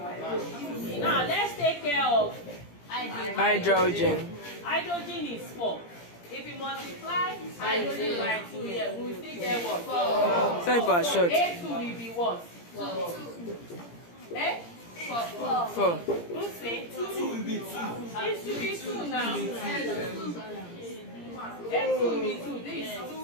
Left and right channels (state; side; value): late; right; 17 ms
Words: Now let's take care of Hydrogen. Hydrogen is 4. If we multiply hydrogen by 2 here, we will still get what? 4. Sorry for short. A2 will be what? 4. 4. Who say? 2 will be 2. It should be 2 now. A2 will be 2. This is